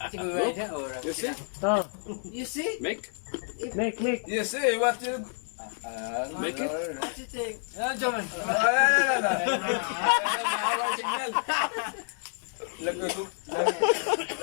Look. You see? Oh, You see? Make. make. You see what you... Make it. What you think? Yan, Jaman. Nawawala signal.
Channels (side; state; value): right; silent; 59 dB below the other